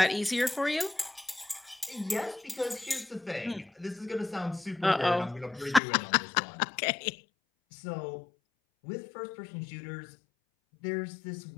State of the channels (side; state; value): right; drops out; at 5.8 s